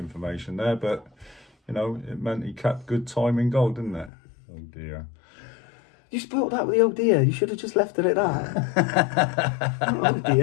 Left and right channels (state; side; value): drops out; right; at 4.1 s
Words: there, but it meant he kept good time in goal, didn't it? Oh dear. You spoiled that with the oh dear. You should have just left it at that. Oh